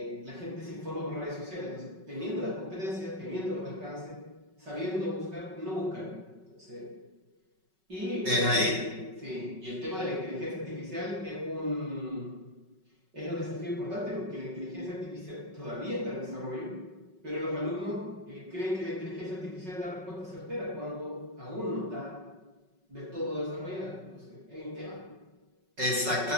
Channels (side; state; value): left; late; 5.3 ms